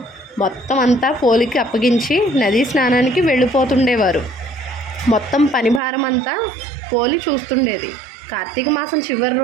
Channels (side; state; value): left; drops out; at 5.8 s